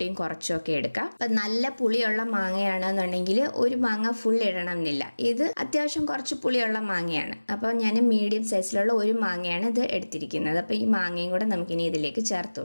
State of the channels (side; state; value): both; inverted; correlation -1.00